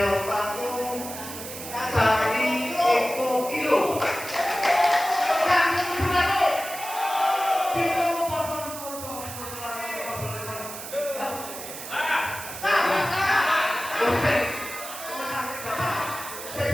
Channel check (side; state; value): right; noise; hiss, 10 dB below the sound